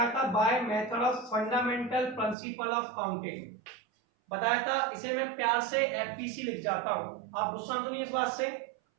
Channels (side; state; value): left; drops out; at 2.4 s